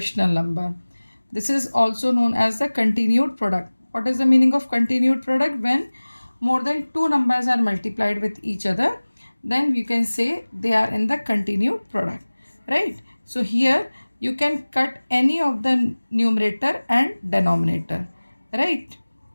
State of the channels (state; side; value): inverted; both; correlation -1.00